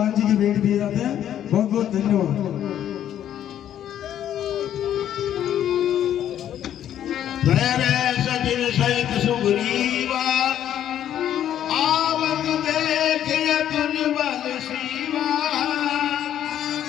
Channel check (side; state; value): right; quieter; 10.7 dB